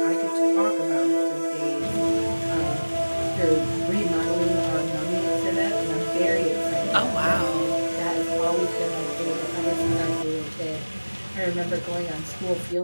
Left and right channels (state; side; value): inverted; both; correlation -1.00